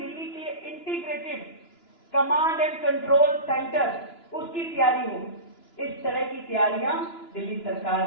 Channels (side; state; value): right; late; 2.9 ms